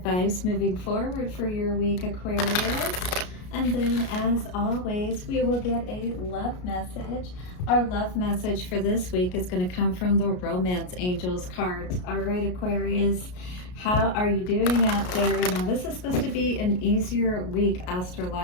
moving forward for your week, Aquarius. And then, as always, we will get a love message. Our love message for this week is going to come from the Romance Angels cards. All right, Aquarius, how are you doing out there? Now, this is supposed to be an easier week,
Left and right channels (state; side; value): late; right; 33 ms